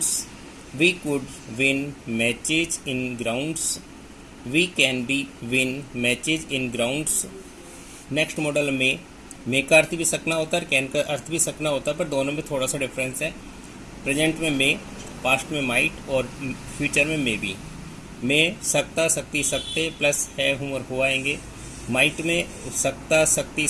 We could win matches in grounds. We can be win matches in grounds. Next model में का अर्थ भी सकना होता है और कैन का अर्थ भी सकना होता है, पर दोनों में थोड़ा सा डिफरेंस है। प्रेजेंट में मे, पास्ट में माइट और फ्यूचर में मे बी। में सकता, सकती, सकते प्लस है, हूँ और हुआ आएंगे। माइट में सकता, सकती,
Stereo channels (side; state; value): both; identical; correlation 1.00